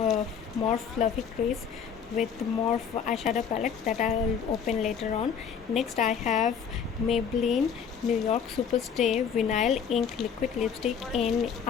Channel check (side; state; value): right; quieter; 7.1 dB